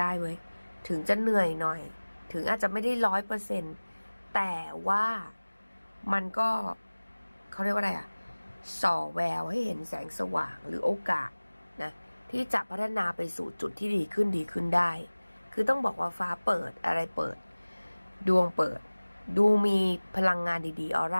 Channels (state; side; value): inverted; both; correlation -1.00